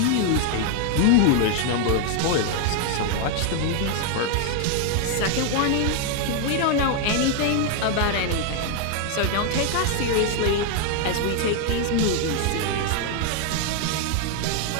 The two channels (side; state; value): both; different; correlation 0.00